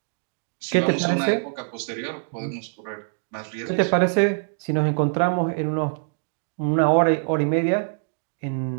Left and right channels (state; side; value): silent; left; digital silence